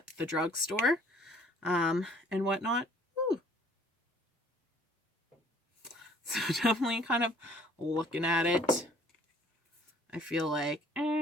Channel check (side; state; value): both; normal; correlation 0.57